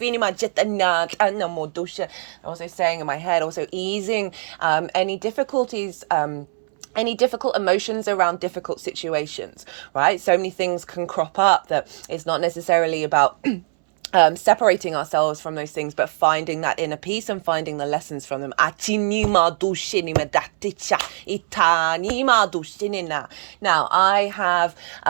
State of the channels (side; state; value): left; silent; 64 dB below the other